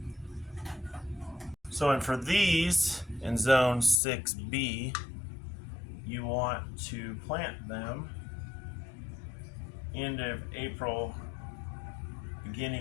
So, and for these in zone 6B, you want to plant them end of April,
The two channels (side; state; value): right; drops out; at 4.0 s